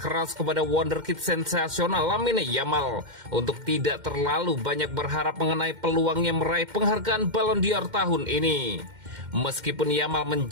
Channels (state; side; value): late; left; 2.1 ms